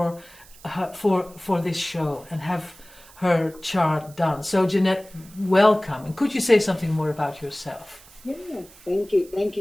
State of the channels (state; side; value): noise; right; hiss, 23 dB below the sound